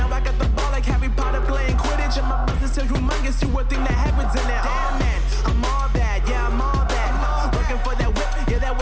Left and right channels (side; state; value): both; identical; correlation 1.00